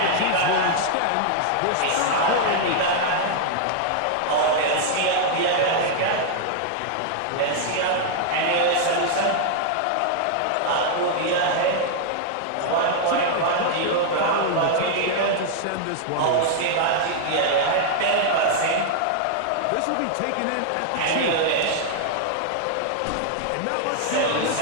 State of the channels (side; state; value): both; different; correlation 0.00